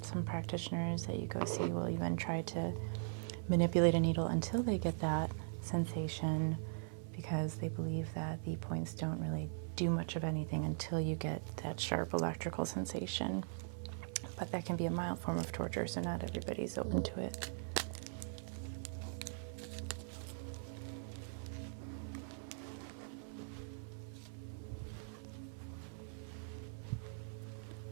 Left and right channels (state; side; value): silent; left; 51 dB below the other